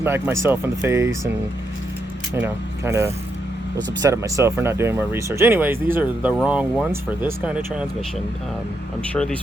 myself in the face, and kind of was upset at myself for not doing more research. Anyways, these are the wrong ones for this kind of transmission. I'm sure these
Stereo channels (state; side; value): normal; both; correlation 0.81